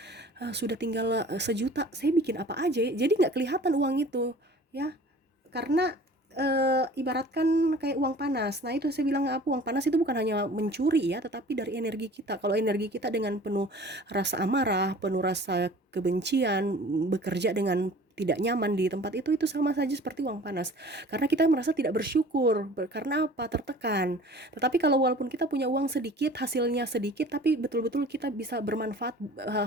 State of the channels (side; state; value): both; normal; correlation 0.46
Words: sudah tinggal sejuta, saya bikin apa aja ya, jadi nggak kelihatan uang itu ya, karena ibaratkan kayak uang panas. Nah itu saya bilang apa, uang panas itu bukan hanya mencuri ya, tetapi dari energi kita. Kalau energi kita dengan penuh rasa amarah, penuh rasa kebencian, bekerja dengan tidak nyaman di tempat itu sama saja seperti uang panas. Karena kita merasa tidak bersyukur. Karena apa? Tertekan. Tetapi kalau walaupun kita punya uang sedikit, hasilnya sedikit, tapi betul-betul kita bisa bermanfaat,